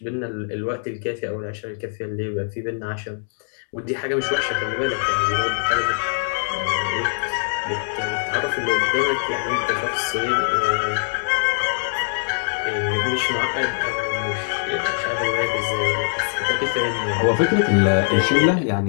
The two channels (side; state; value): right; silent; digital silence